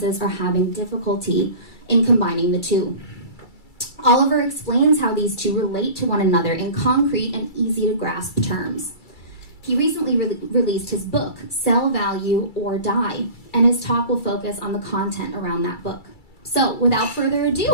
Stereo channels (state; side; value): late; right; 2.3 ms